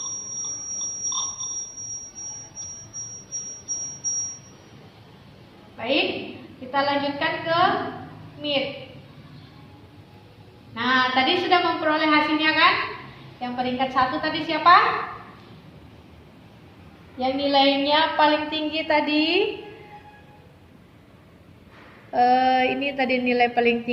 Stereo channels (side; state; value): both; identical; correlation 1.00